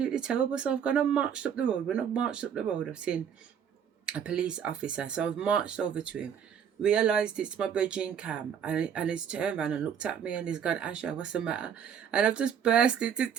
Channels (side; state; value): left; quieter; 8.1 dB